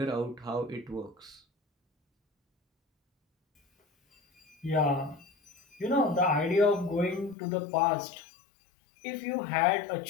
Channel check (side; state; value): right; drops out; at 7.4 s